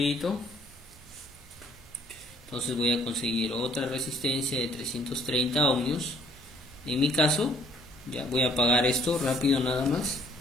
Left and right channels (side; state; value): both; normal; correlation 0.62